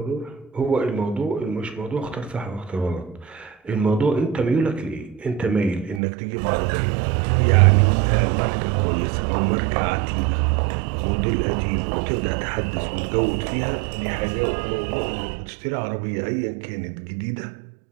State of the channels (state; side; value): drops out; left; at 6.0 s